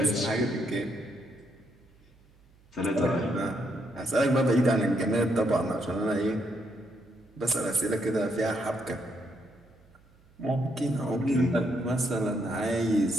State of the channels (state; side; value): noise; right; hum, 29 dB below the sound